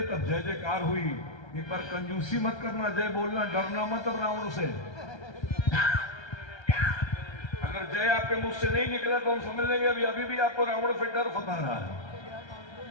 तब जय जयकार हुई। एक बार कंजूसी मत करना, जय बोलना, डरना मत अब रावण से। अगर जय आपके मुख से नहीं निकला तो हम समझ लेंगे अभी भी आपको रावण से डर सता रहा है।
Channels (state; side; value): late; right; 1.3 ms